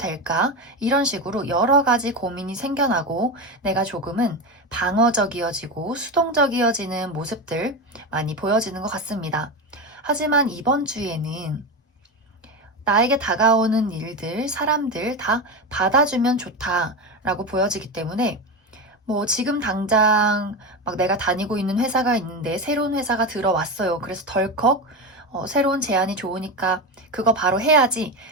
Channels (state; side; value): normal; both; correlation 0.18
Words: 이런 식으로 여러 가지 고민이 생겨나고 내가 조금은 방어적이어지고 수동적이어지는 모습들 많이 보여지는 것 같습니다. 하지만 이번 주에는 나에게 다가오는 일들, 사람들 다 받아주면 좋다라고 보여지기 때문에 지금 당장 막 내가 다니고 있는 회사가 있는데 새로운 회사가 들어왔어요. 그래서 덜컥 새로운 제안이 좋으니까 그거 바로 해야지